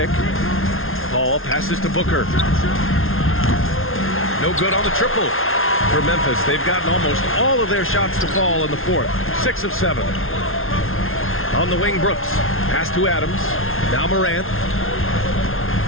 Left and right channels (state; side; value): late; right; 0.61 ms